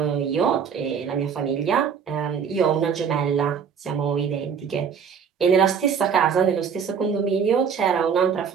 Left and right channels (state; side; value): quieter; left; 6.9 dB